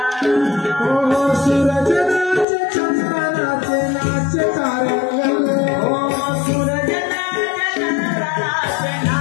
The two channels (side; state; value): right; drops out; at 2.5 s